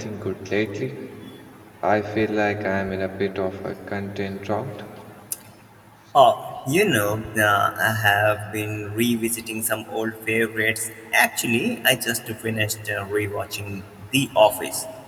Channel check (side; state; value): both; identical; correlation 1.00